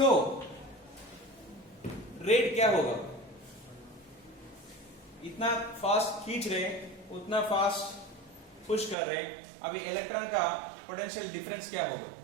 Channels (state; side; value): drops out; left; at 9.0 s